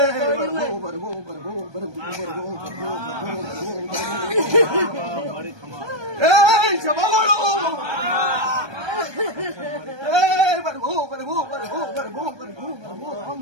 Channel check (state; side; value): late; left; 1.2 ms